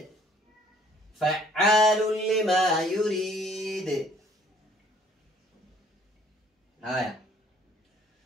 فعال لما يريد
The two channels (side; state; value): both; normal; correlation 0.59